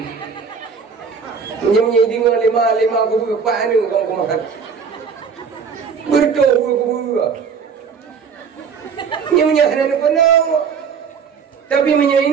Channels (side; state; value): left; quieter; 6.1 dB